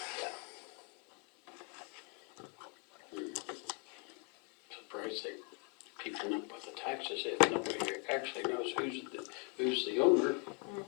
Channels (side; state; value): right; quieter; 31.2 dB